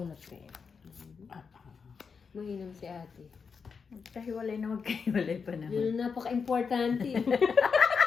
ko yun. Mahinam si ate. Magkahiwalay na magkahiwalay pa naman. Yun ang napaka-importante.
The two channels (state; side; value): quieter; right; 5.7 dB